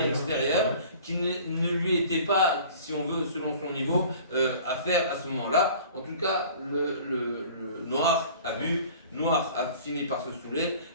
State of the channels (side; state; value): both; inverted; correlation -0.46